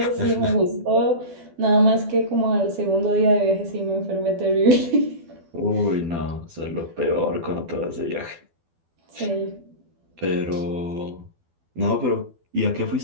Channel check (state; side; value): late; left; 12 ms